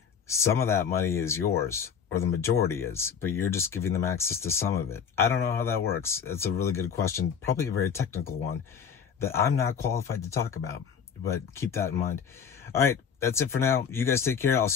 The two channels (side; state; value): right; quieter; 7.0 dB